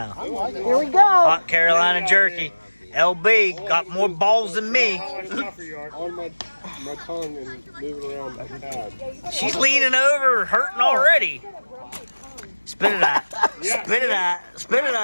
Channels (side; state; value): both; inverted; correlation -1.00